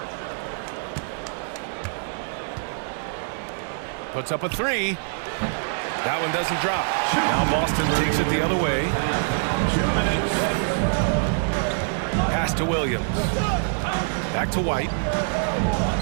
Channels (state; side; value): silent; left; digital silence